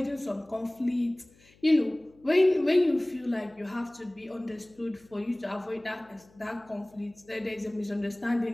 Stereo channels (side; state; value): left; noise; hum, 29 dB below the sound